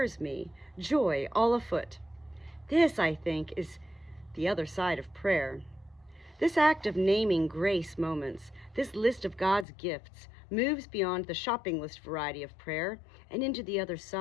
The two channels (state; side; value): drops out; right; at 9.7 s